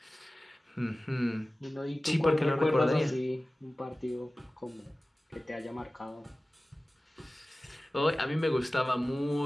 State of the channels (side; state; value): both; normal; correlation 0.97